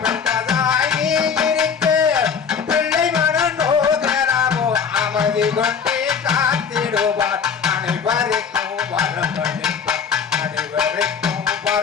பெட்டதாகி இருக்க பிள்ளை மனம் நோகராமோ அமைதி கொண்டே காத்திடுவார் அனைவருக்கும் வரமளிப்பார் அனைவருக்கும்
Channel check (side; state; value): right; quieter; 6.5 dB